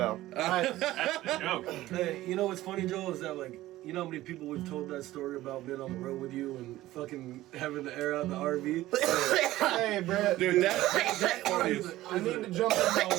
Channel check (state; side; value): quieter; left; 16.0 dB